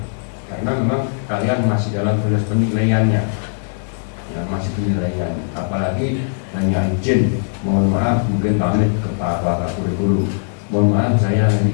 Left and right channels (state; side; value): silent; right; 65 dB below the other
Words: karena memang kalian masih dalam proses penilaiannya ya, masih penilaian. Apalagi hanya izin, mohon maaf mungkin pamit ke Pak Kurikulum, mohon maaf saya hari